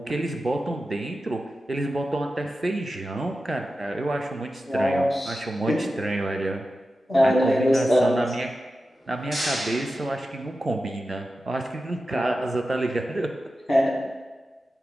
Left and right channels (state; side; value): normal; both; correlation 0.92